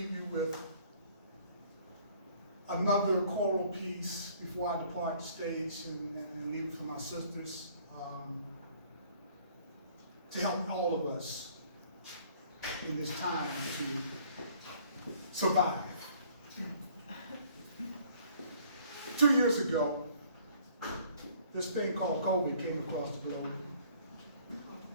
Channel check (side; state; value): both; inverted; correlation -0.58